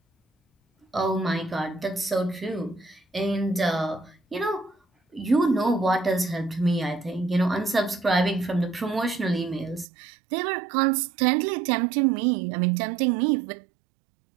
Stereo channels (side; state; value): left; drops out; at 9.9 s